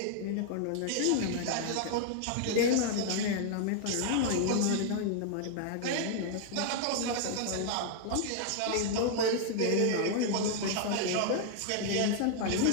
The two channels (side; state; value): both; different; correlation 0.00